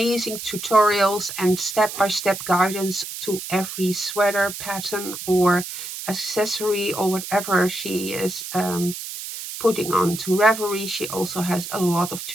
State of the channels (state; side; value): noise; right; hiss, 8 dB below the sound